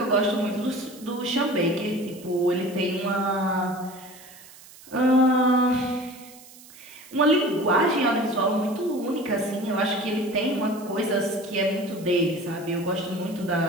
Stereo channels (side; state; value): right; noise; hiss, 21 dB below the sound